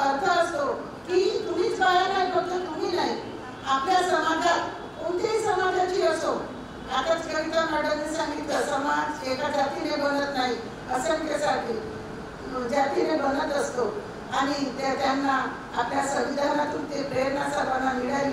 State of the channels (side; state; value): both; identical; correlation 1.00